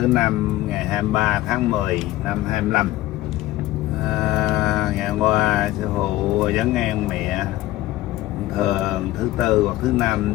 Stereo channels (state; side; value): quieter; right; 16.3 dB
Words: năm ngày 23 tháng 10 năm 25. Ngày hôm qua Sư Phụ vấn an mẹ. Thường thứ tư hoặc thứ năm